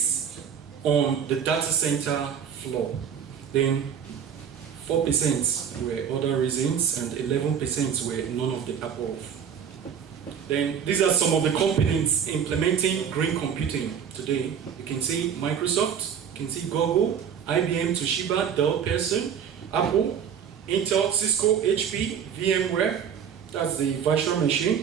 on the data center floor. Then 4% were other reasons and 11% were none of the above. Then these are some of the companies implementing green computing today. You can see Microsoft, you can see Google, IBM, Toshiba, Dell, Pearson, Apple, Intel, Cisco, HP, VMware, that's the virtual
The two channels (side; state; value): left; quieter; 7.8 dB